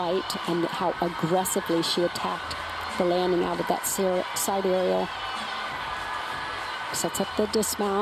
and how aggressively she attacked the landing out of that side aerial. Sets up the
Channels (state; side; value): identical; both; correlation 1.00